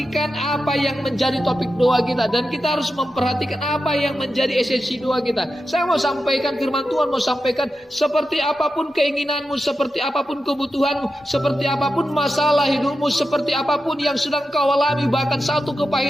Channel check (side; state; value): both; normal; correlation 0.90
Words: apa yang menjadi topik doa kita. Dan kita harus memperhatikan apa yang menjadi esensi doa kita. Saya mau sampaikan firman Tuhan, mau sampaikan seperti apapun keinginanmu, seperti apapun kebutuhanmu, seperti apapun masalah hidupmu, seperti apapun yang sedang kau alami, bahkan satu